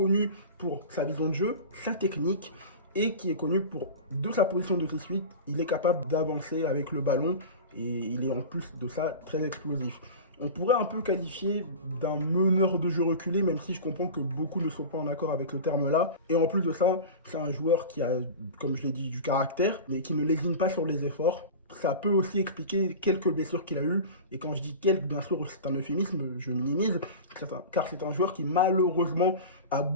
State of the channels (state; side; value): inverted; both; correlation -0.31